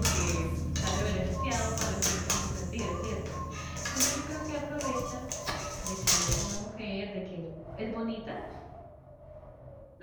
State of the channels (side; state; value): both; identical; correlation 1.00